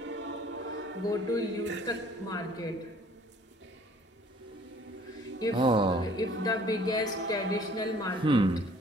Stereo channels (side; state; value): both; normal; correlation 0.55